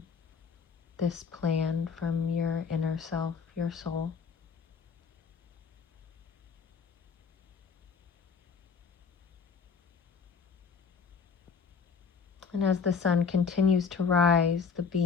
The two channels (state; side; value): quieter; right; 5.7 dB